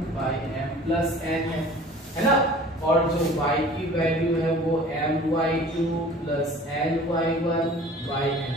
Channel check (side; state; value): both; normal; correlation 0.46